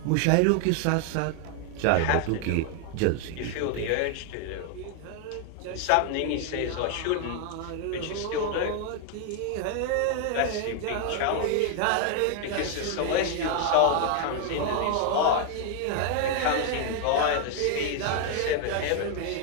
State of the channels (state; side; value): different; both; correlation 0.00